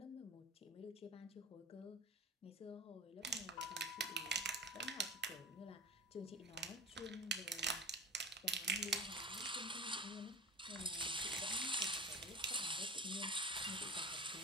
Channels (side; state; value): both; normal; correlation 0.33